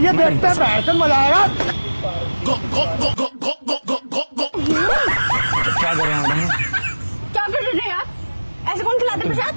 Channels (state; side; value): inverted; both; correlation -1.00